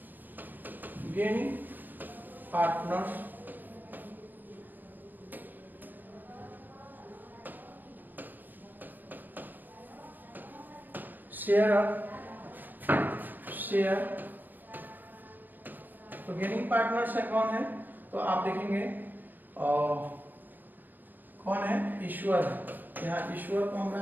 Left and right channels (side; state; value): left; late; 0.087 ms